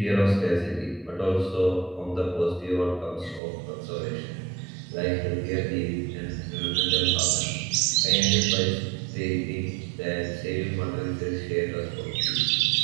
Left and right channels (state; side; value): drops out; left; at 3.4 s